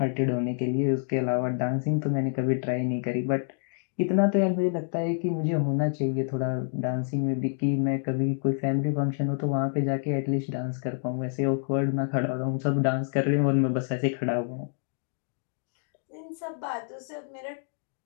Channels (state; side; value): silent; right; 58 dB below the other